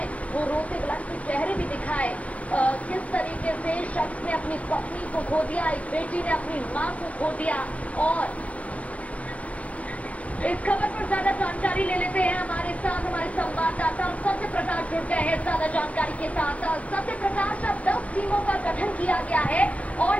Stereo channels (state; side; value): late; right; 0.065 ms